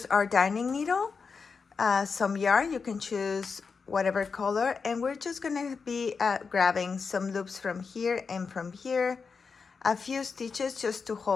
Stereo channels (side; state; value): right; quieter; 5.2 dB